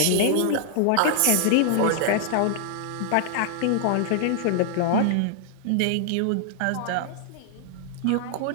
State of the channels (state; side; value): different; both; correlation 0.00